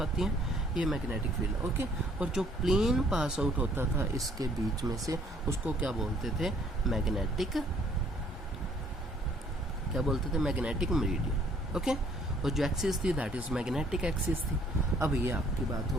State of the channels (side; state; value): both; normal; correlation 0.61